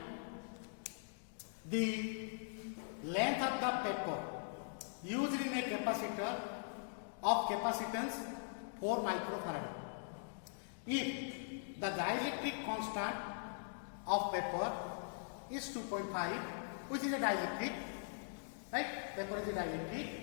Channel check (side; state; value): right; silent; digital silence